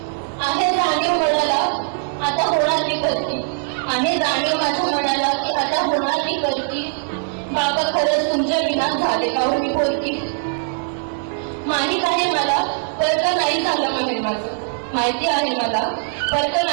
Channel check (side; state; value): left; silent; digital silence